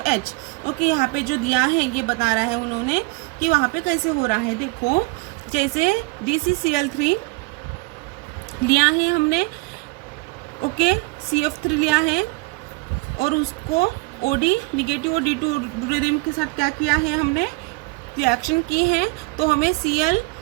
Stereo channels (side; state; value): left; quieter; 25.3 dB